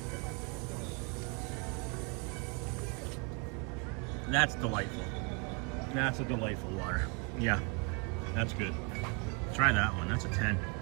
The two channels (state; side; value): quieter; left; 30.9 dB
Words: That's delightful. That's a delightful water. Yeah, that's good. Try that one. That's a 10.